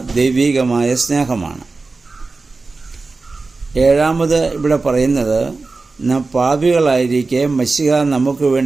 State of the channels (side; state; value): left; quieter; 3.8 dB